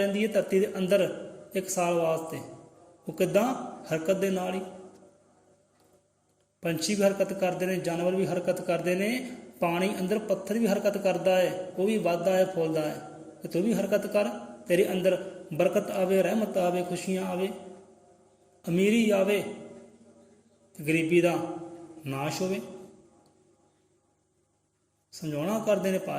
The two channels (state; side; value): identical; both; correlation 1.00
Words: ਹੈ ਧਰਤੀ ਦੇ ਅੰਦਰ ਇੱਕ ਸਾਲ ਵਾਸਤੇ। ਉਹ ਕਿੱਦਾਂ? ਹਰਕਤ ਦੇ ਨਾਲ ਹੀ। ਪੰਛੀ ਵੀ ਹਰਕਤ ਕਰਦੇ ਨੇ, ਜਾਨਵਰ ਵੀ ਹਰਕਤ ਕਰਦੇ ਨੇ, ਪਾਣੀ ਅੰਦਰ ਪੱਥਰ ਵੀ ਹਰਕਤ ਕਰਦਾ ਹੈ, ਉਹ ਵੀ ਵੱਧਦਾ ਹੈ, ਫੁੱਲਦਾ ਹੈ। ਤੇ ਤੂੰ ਵੀ ਹਰਕਤ ਕਰ, ਤੇਰੇ ਅੰਦਰ ਬਰਕਤ ਆਵੇ, ਰਹਿਮਤ ਆਵੇ, ਖੁਸ਼ੀਆਂ ਆਵੇ, ਅਮੀਰੀ ਆਵੇ, ਗਰੀਬੀ ਦਾ ਨਾਸ਼ ਹੋਵੇ। ਸਮਝਾਉਣਾ ਕਰਦੇ ਨੇ